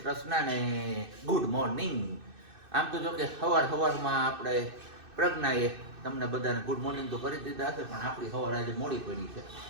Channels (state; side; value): late; left; 2.6 ms